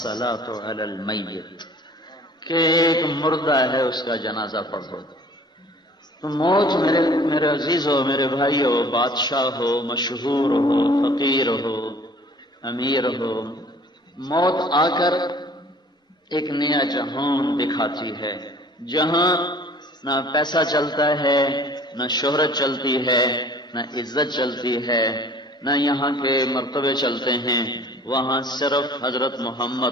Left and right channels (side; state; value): both; normal; correlation 0.50